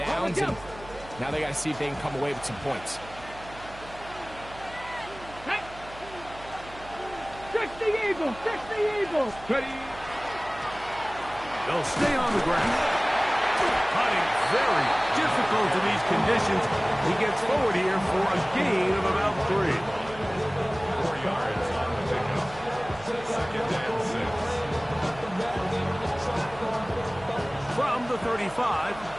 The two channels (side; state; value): right; noise; hum, 18 dB below the sound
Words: and now they got to see if they can come away with some points. Fix the Eagles! Fix the Eagles! Ready? They'll stay on the ground. Cutting very difficult in these conditions. He gets forward here for a gain of about 3. 4 yards on the pickup. Second and 6. From the 35,